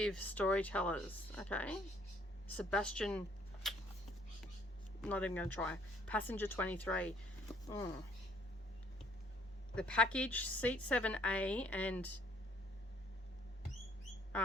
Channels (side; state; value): both; normal; correlation 0.63